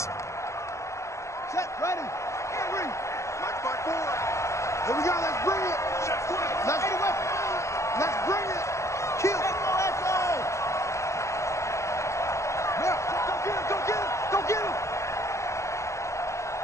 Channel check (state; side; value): late; right; 0.14 ms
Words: Set, ready. Mike 5-4. Here we go. Let's bring it. Let's bring it. Kill. Go get him.